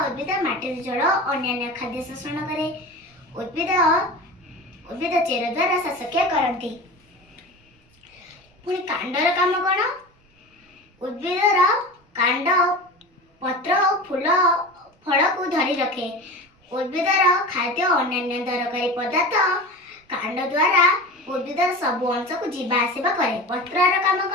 उद्भिद माटी जल और अन्य खाद्य शोषण करे। उद्भिद चेर द्वारा श्वासक्रिया करती। पुणी कांडर काम कोन? उद्भिदर कांड पत्र फूल फल को धरी रखे। उद्भिदर खाद्य और अन्य दरकारी पदार्थ कांड द्वारा उद्भिदर सब अंश को जीवा आसिबा करे। पत्रर काम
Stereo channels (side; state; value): both; normal; correlation 0.31